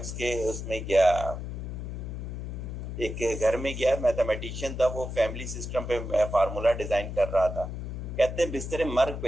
के उसमें गया, एक घर में गया, मैथमेटिशियन था, वो फैमिली सिस्टम पे फार्मूला डिजाइन कर रहा था। कहते हैं बिस्तरे मर्ग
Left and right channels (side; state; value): left; noise; hum, 6 dB below the sound